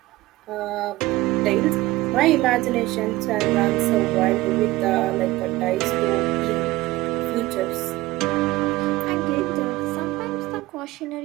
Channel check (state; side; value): quieter; left; 18.7 dB